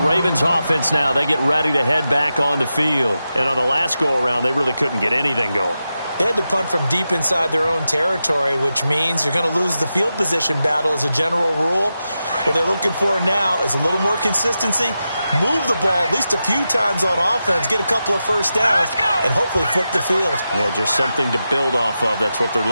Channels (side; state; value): both; inverted; correlation -0.90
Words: offense now, they get ready to head back on the field. And on the last go-around, they really couldn't get anything going. They had to punt from deep inside their own territory, which means you're going to lose the field position battle as a general rule. What they're looking for now is a little more consistency, move the ball at least a few times on offense, get a couple of 1st downs, and hopefully flip the field. Yeah, just something to build off of. That's what they're